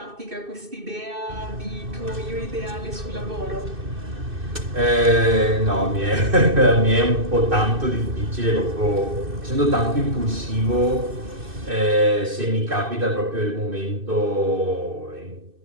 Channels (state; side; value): late; left; 2.6 ms